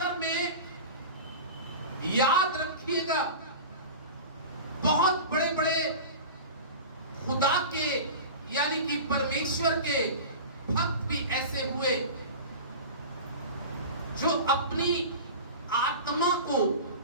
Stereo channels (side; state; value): both; inverted; correlation -0.32